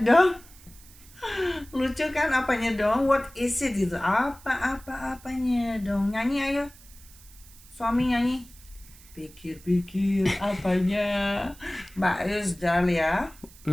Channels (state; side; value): noise; right; hiss, 23 dB below the sound